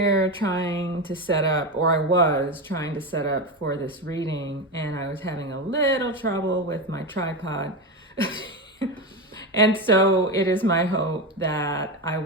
trying to set up, or I was trying to set up for this reading, and I was having a little trouble with my tripod. And so it is my hope that I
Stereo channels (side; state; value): both; normal; correlation 0.16